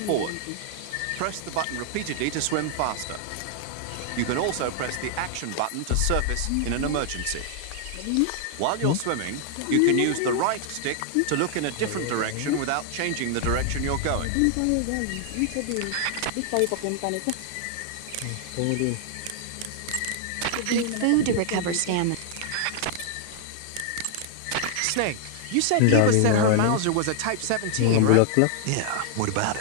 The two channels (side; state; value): both; different; correlation 0.00